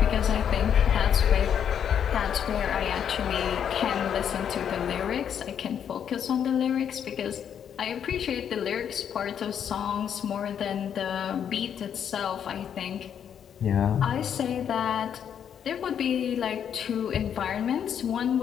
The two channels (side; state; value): right; quieter; 8.5 dB